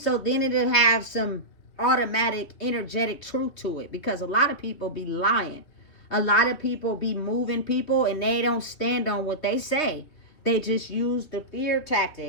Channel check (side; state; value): right; late; 3.2 ms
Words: then it'll have some automatic, energetic truth to it. Because a lot of people be lying. A lot of people be moving people, and they don't stand on what they say. They just use the fear